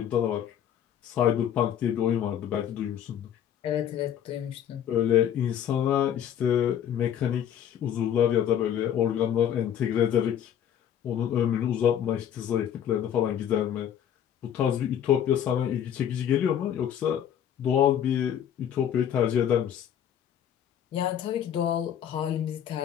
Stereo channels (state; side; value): quieter; right; 9.7 dB